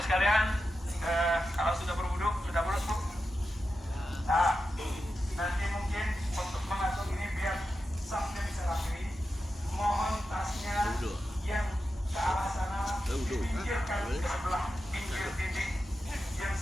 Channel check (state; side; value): normal; both; correlation 0.90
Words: sekalian, kalau sudah berwudu, sudah bolos Bu? Nah, nanti mungkin untuk mengatur ini biar safnya bisa rapi, mohon tasnya yang ke arah sana dipinggirkan ke sebelah pinggir dinding, yang